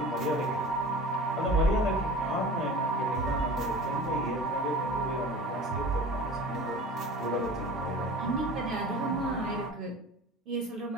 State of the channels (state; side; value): normal; both; correlation 0.39